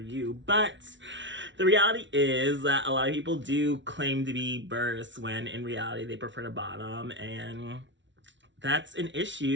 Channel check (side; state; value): left; late; 0.54 ms